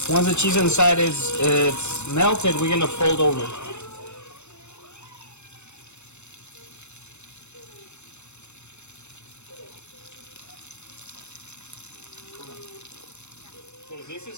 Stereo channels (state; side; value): late; right; 0.82 ms